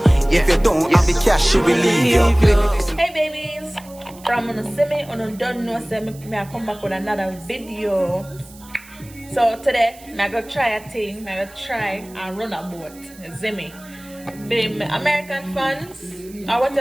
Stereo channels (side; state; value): right; noise; hiss, 22 dB below the sound